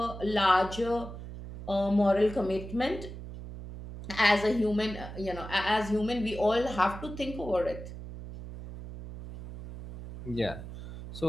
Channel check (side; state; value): right; noise; hum, 11 dB below the sound